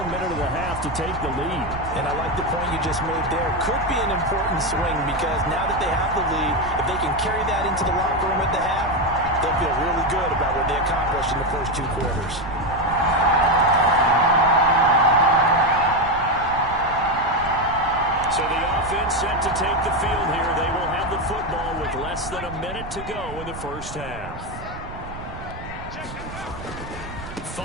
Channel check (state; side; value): noise; right; rumble, 12 dB below the sound